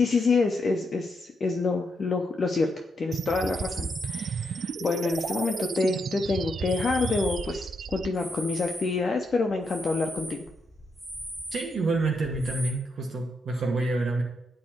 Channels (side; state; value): both; normal; correlation 0.80